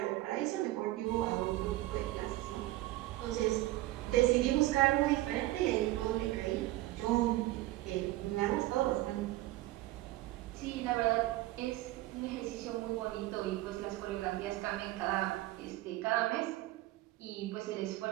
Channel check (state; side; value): quieter; left; 17.2 dB